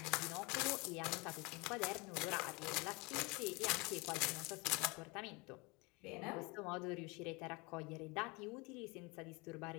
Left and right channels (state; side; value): quieter; right; 27.4 dB